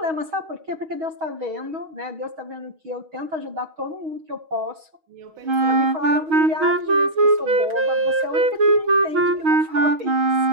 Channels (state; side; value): late; left; 6.3 ms